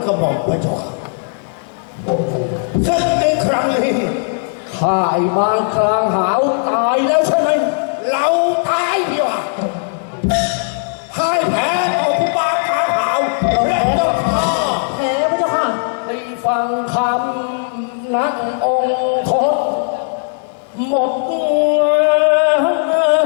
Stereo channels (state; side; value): silent; right; digital silence